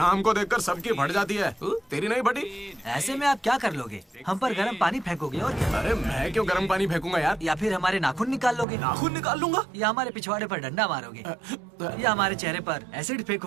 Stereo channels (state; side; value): drops out; left; at 8.7 s